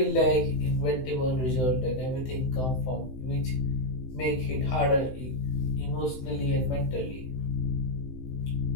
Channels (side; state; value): right; late; 16 ms